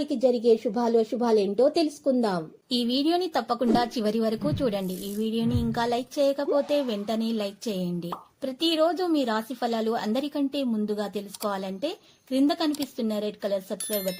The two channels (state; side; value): identical; both; correlation 1.00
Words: జరిగే శుభాలేంటో తెలుసుకుందాం. ఈ వీడియోని తప్పకుండా చివరి వరకు చూడండి. ఈ వీడియోని ఇంకా లైక్ చేయకపోతే వెంటనే లైక్ చేయండి. ప్రతిరోజు మీ రాశి ఫలాలు అందరికంటే ముందుగా తెలుసుకోవాలంటే క్రింద కనిపిస్తున్న రెడ్ కలర్ సబ్స్క్రైబ్